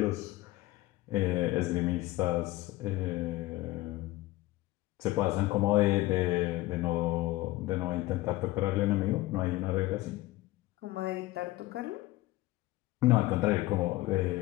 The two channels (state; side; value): quieter; right; 18.1 dB